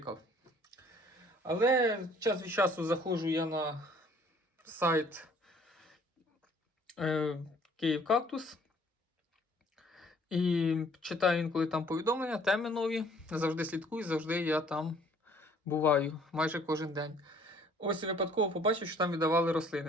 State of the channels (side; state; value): both; normal; correlation 0.58